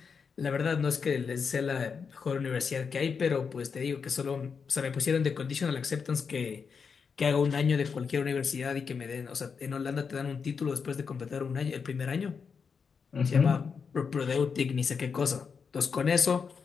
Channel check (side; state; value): right; quieter; 5.9 dB